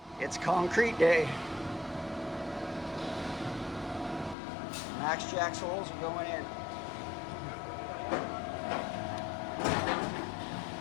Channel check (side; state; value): right; drops out; at 4.4 s